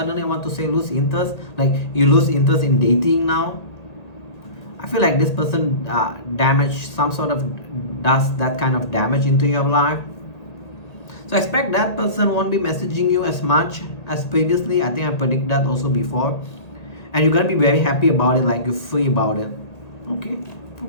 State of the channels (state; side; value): late; right; 1.7 ms